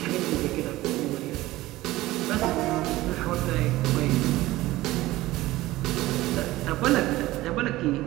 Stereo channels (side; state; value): left; quieter; 17.4 dB